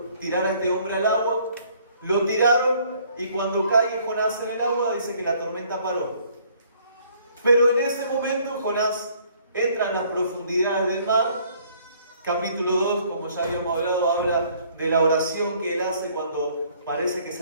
tirar a este hombre al agua. Lo tiraron y cuando cae Jonás en el agua dice que la tormenta paró. Pero en ese momento Jonás entra en las profundidades del mar. Capítulo 2, como ya habíamos hablado, habla de la oración que él hace cuando parece que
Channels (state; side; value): inverted; both; correlation -0.61